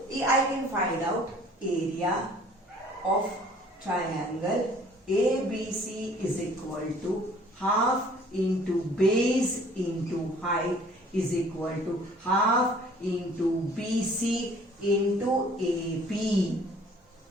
I can find out area of triangle ABC is equal to half into base into height is equal to half into BC into AP.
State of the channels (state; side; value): normal; both; correlation 0.54